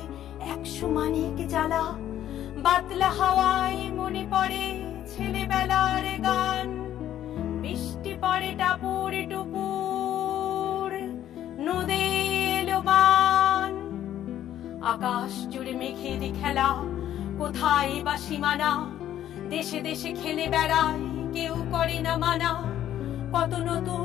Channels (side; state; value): right; quieter; 11.6 dB